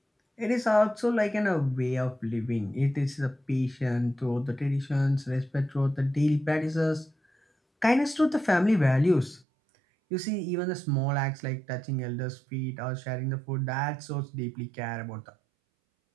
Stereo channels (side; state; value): left; drops out; at 9.5 s